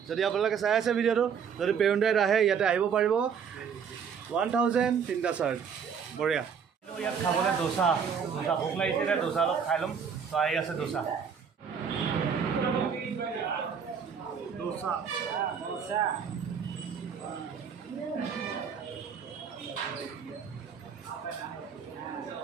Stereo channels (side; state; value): left; quieter; 6.9 dB